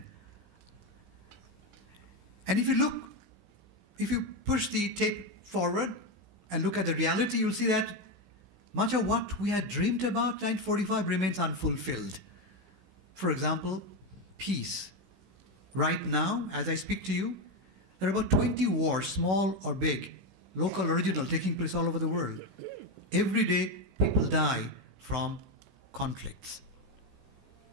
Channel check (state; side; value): late; left; 16 ms